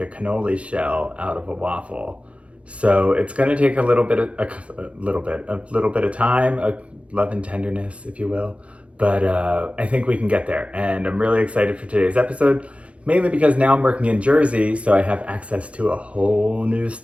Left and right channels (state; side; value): late; left; 0.062 ms